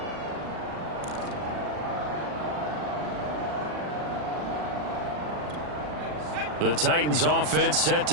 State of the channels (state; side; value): late; left; 40 ms